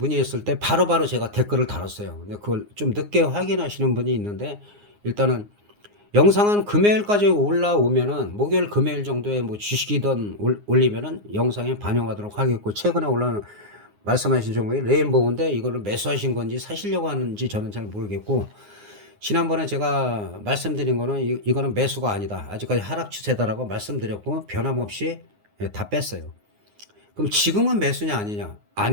때 바로바로 제가 댓글을 달았어요. 근데 그걸 좀 늦게 확인하시는 분이 있는데 일단은 영상은 금요일까지 올라오면은 목요일 금요일 정도에 뭐 주식이든 올리면은 영상에 반영하도록 하겠고 최근에 올라온 말씀하신 종목이 레인보우인데 이거를 매수하신 건지 사시려고 하는지 저는 잘 모르겠고 지난번에 제가 말씀드린 거는 이거는 매수가 아니다. 아직까지 하락 추세다라고 말씀드렸고 변함없이 다 뺐어요. 그럼 지금은 매수냐 아니냐?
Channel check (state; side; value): late; left; 9.7 ms